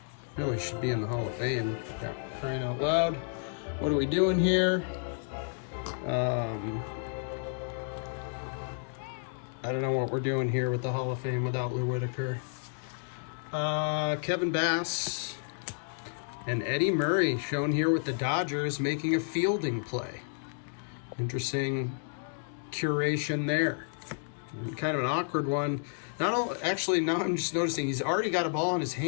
really should be in the Hall of Fame. Yeah, praying out loud. What are we doing here? I don't know what we're doing here with the Hall of Fame without Lou Whitaker. Kevin Bass and Eddie Murray shown here with the Dodgers making a fielding play. Interesting curation there. Kind of an awkward one. Actually, now I'm just noticing he's already got a ball in his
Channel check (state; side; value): silent; right; digital silence